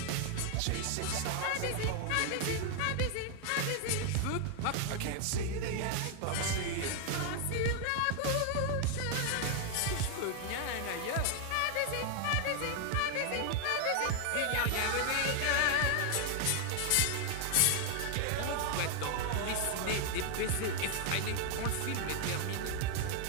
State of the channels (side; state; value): both; different; correlation 0.00